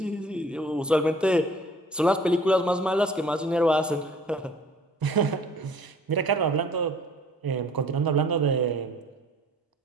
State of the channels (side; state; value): both; normal; correlation 0.51